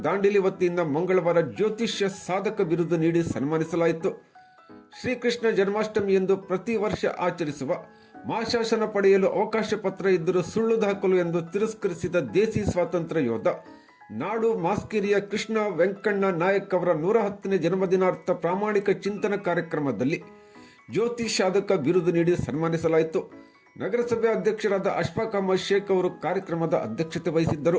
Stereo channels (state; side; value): identical; both; correlation 1.00